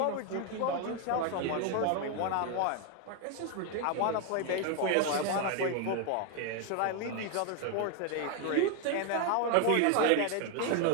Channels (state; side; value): different; both; correlation 0.01